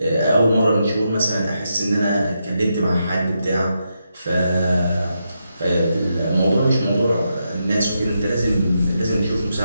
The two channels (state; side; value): inverted; both; correlation -0.84